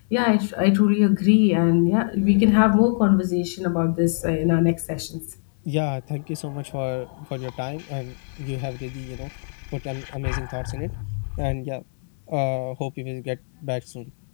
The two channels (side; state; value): right; silent; digital silence